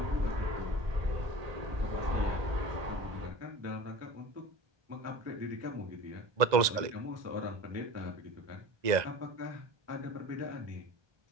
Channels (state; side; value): late; left; 1.9 ms